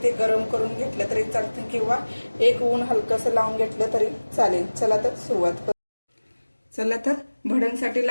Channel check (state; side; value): inverted; both; correlation -1.00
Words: ते गरम करून घेतलं तरी चालतं किंवा एक ऊन हलकसं लावून घेतलं तरी चालेल। चला तर सुरुवात करू। चला तर भडंगसाठी